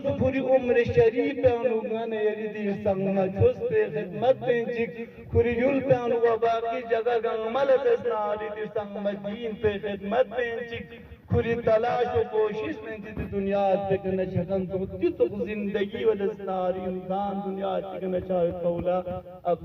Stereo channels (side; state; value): both; identical; correlation 1.00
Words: پوری عمر شریف انوگان یری دیر سنگنا چوز پی خدمت پینچک کری یول پی انوگا باقی جگہ گنگ ملر تسناری دیر سنگنا دین پی خدمت پینچک کری تلاش و کوشش میں جد دنیا تک نہ چھکن تو تک زندگی و دستاری انسان دنیا تک نہ چاہے قولا